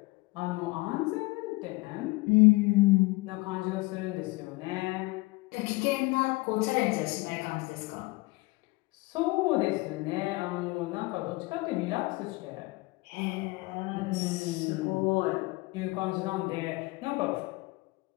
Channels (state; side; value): quieter; right; 23.4 dB